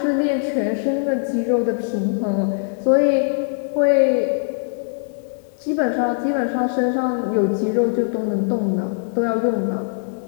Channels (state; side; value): silent; right; digital silence